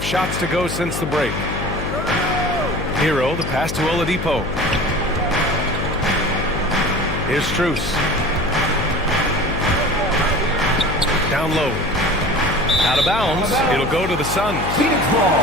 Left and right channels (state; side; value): noise; left; hum, 5 dB below the sound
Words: shots to go since the break. Hero, the pass to Oladipo. Here's Strus. Down low. Out of bounds. It'll go to the Suns. Phoenix